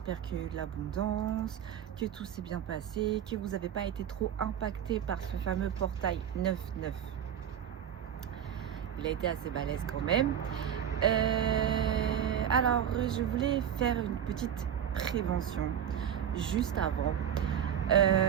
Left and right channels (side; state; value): left; quieter; 9.3 dB